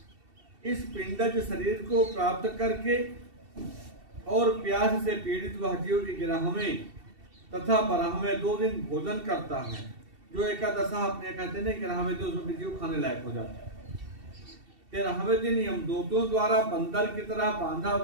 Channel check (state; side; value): late; left; 2.7 ms